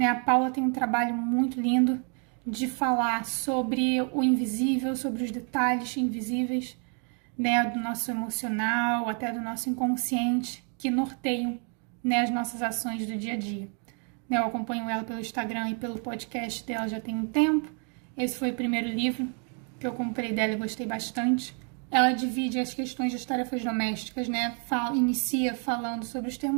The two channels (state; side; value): quieter; left; 39.8 dB